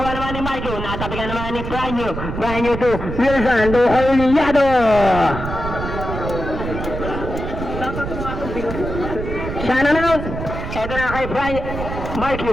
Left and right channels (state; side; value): noise; right; rumble, 6 dB below the sound